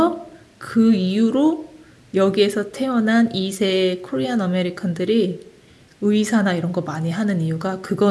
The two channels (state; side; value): identical; both; correlation 1.00